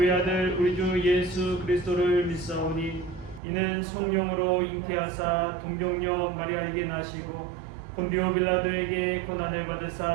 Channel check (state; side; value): drops out; left; at 3.4 s